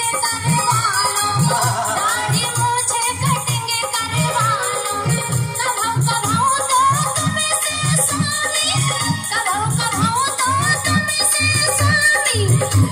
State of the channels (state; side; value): identical; both; correlation 1.00